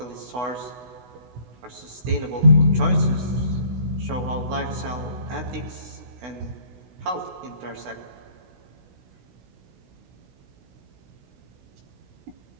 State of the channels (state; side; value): late; left; 16 ms